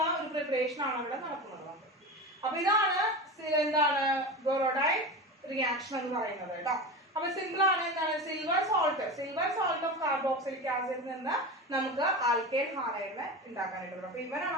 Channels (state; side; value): normal; both; correlation 0.26